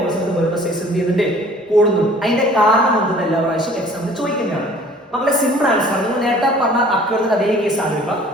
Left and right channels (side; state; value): both; normal; correlation 0.51